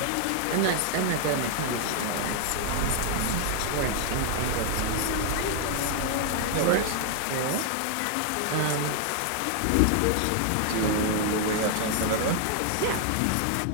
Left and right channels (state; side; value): different; both; correlation 0.00